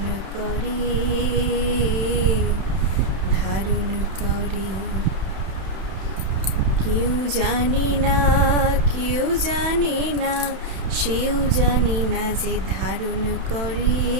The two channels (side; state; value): left; late; 31 ms